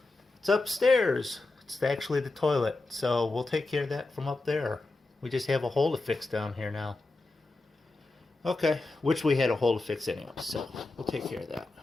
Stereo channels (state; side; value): quieter; right; 3.2 dB